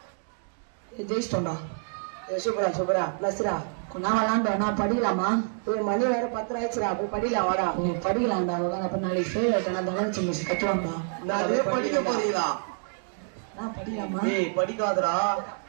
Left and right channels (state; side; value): silent; left; 58 dB below the other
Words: ஜெயிஸ்டோடா. ஏய் சூப்பரா நஸ்ரா. நான் விளையாண்டா நான் படிக்கலாமா? ஏய் மணி வேற 10 ஆயிடுச்சுடா. போய் படிக்கலாம் வாடா. நீ படிக்கலாம்டா. அப்ப நாளைக்கு ஃபெயில் ஆயிட்டா தங்கச்சி மிஸ் கட்டுவாங்கடா. நான் படிக்க போறீங்களா? நான் படிக்கலாமா? டேய் படிக்காதடா.